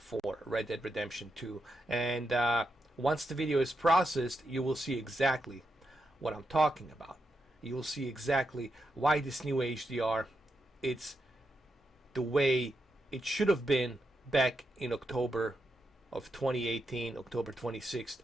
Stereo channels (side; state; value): both; normal; correlation 0.85